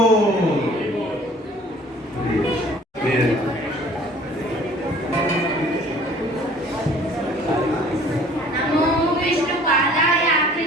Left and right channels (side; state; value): both; normal; correlation 0.52